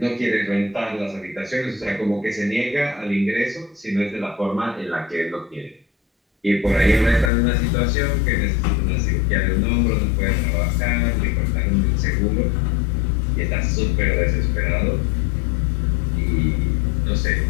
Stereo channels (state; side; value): drops out; right; at 7.3 s